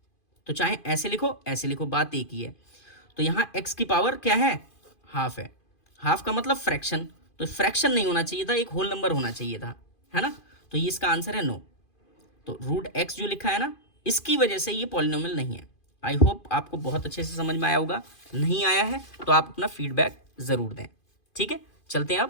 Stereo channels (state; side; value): late; right; 2.5 ms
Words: तो चाहे ऐसे लिखो, बात एक ही है। तो यहाँ x की पावर क्या है, हाफ है, हाफ का मतलब फ्रैक्शन, तो फ्रैक्शन नहीं होना चाहिए था, एक होल नंबर होना चाहिए था, है ना, तो ये इसका आंसर है नो। तो √x जो लिखा है ना, इसकी वजह से ये पॉलिनोमियल नहीं है। आई होप आपको बहुत अच्छे से समझ में आया होगा, नहीं आया है तो आप अपना फीडबैक ज़रूर दें, ठीक है। चलते हैं